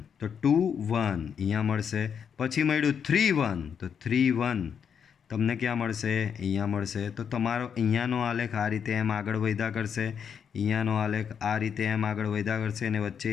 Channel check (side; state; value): right; quieter; 7.4 dB